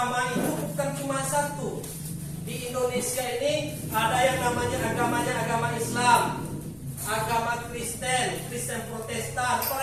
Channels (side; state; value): both; identical; correlation 1.00